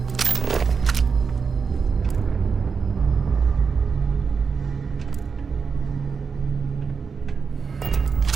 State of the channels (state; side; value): quieter; left; 5.6 dB